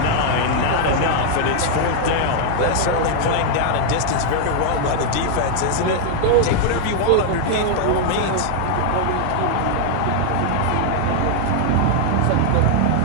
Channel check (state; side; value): different; both; correlation 0.00